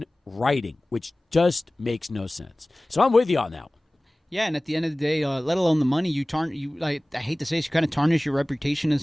writing, which just makes no sense. So I'm with you on that one. Yeah, and at the end of the day, let alone the money, I hate to say this, you kind of tarnish your reputation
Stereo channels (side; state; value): both; normal; correlation 0.98